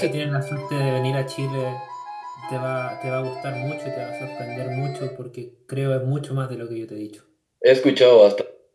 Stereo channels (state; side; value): identical; both; correlation 1.00